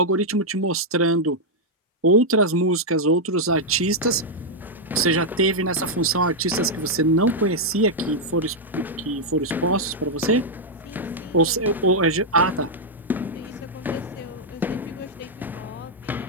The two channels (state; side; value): normal; both; correlation -0.03